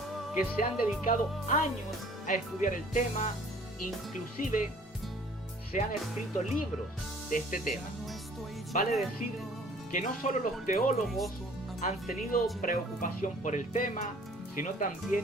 que se han dedicado años a estudiar el tema, inclusive se han escrito libros de este tema. Vale decir que no solo los teólogos han tenido preocupación por el tema, sino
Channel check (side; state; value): both; normal; correlation 0.53